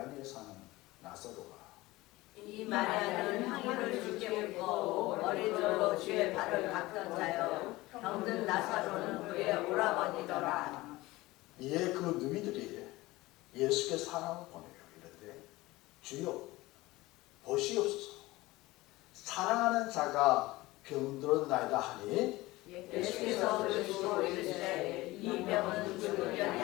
사는 나사로가 이 마리아는 향유를 주께 붓고 머리들로 주의 발을 닦던 자요 병든 나사로는 그의 오라버니더라. 이에 그 누이들이 예수께 사람을 보내요. 이르되 주여 보시옵소서 사랑하는 자가 병들었나이다 하니 예수께서 들으시고 이르시되 이 병은 죽을 병이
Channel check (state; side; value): quieter; right; 19.6 dB